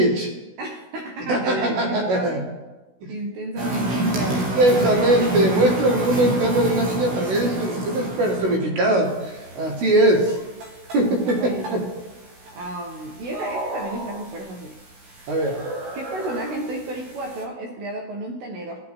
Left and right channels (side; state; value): left; late; 16 ms